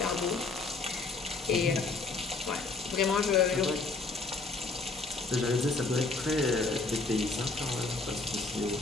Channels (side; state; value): right; quieter; 3.8 dB